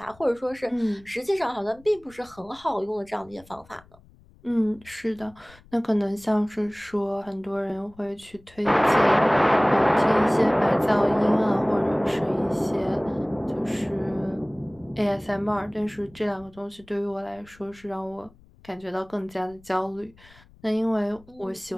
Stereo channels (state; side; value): noise; left; rumble, 26 dB below the sound